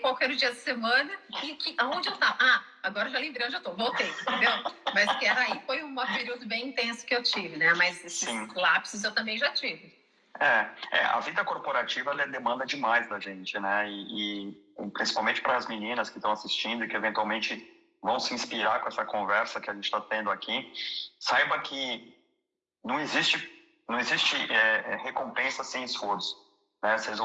era o dia da semana e aonde eu estava. Ah, agora já lembrei onde eu tô, voltei, entendeu? Mas que era aí, foi um período bem intenso que eu tive, né? Mas esses lapsos eu também já tive. A vida corporativa ela demanda demais da gente, né? E principalmente para as meninas que estão assistindo e que eventualmente vão se inspirar com essa conversa que a gente está tendo aqui, saiba que não existe recompensa sem esforço, né? Vocês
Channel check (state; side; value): identical; both; correlation 1.00